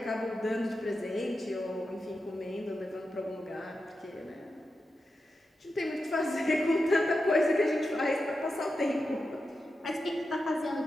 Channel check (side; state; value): both; normal; correlation 0.89